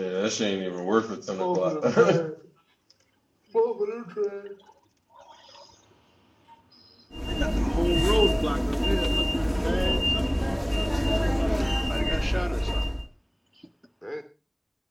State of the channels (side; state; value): both; identical; correlation 1.00